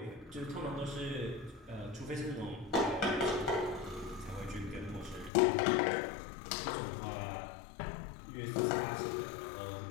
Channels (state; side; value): drops out; right; at 5.3 s